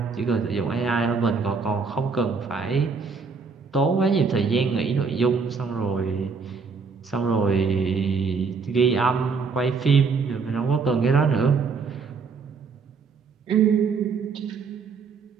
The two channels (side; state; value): left; quieter; 5.0 dB